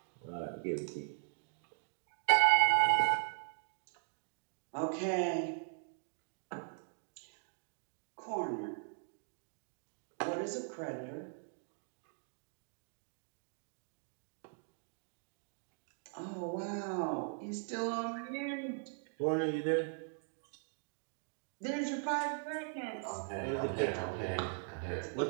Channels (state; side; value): silent; left; 51 dB below the other